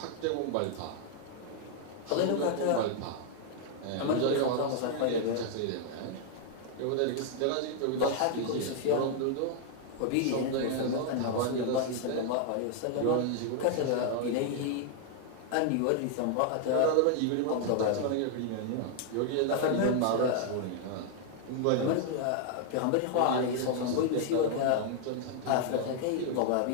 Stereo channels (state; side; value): different; both; correlation 0.00